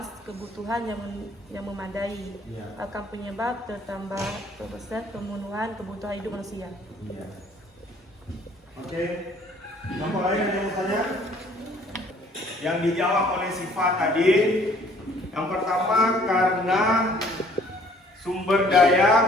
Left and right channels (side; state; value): both; normal; correlation 0.58